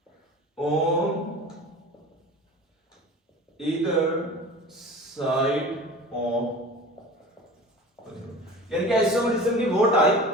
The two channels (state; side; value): normal; both; correlation 0.37